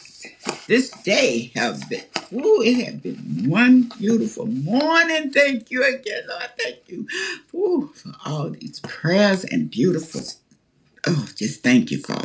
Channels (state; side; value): identical; both; correlation 1.00